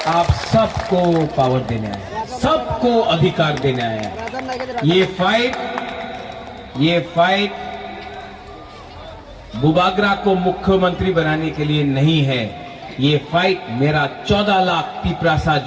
आप सबको पावर देने आए हैं, सबको अधिकार देने आए हैं। ये फाइट बुबागरा को मुख्यमंत्री बनाने के लिए नहीं है। ये फाइट मेरा 14 लाख तिप्रासा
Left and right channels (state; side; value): identical; both; correlation 1.00